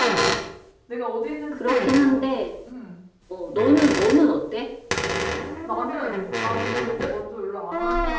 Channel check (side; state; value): both; identical; correlation 1.00